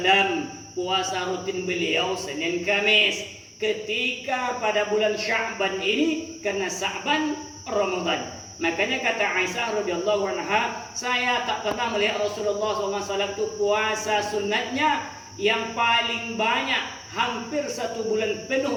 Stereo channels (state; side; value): identical; both; correlation 1.00